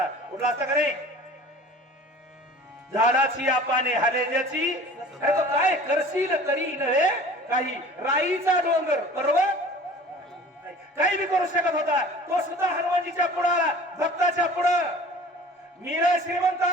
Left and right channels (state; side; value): normal; both; correlation 0.44